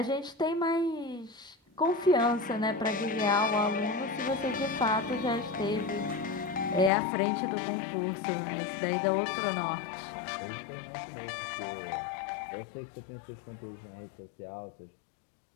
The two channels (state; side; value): drops out; right; at 6.9 s